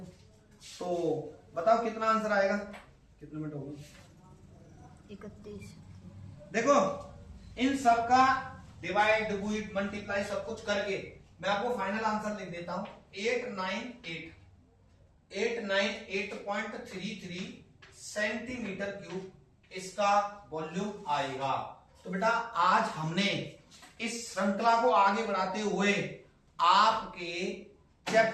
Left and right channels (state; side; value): identical; both; correlation 1.00